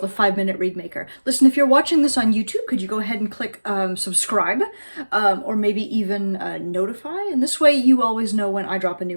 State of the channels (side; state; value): both; inverted; correlation -1.00